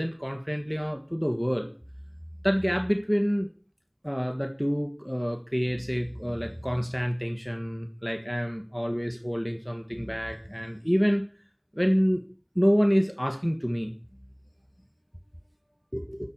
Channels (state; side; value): identical; both; correlation 1.00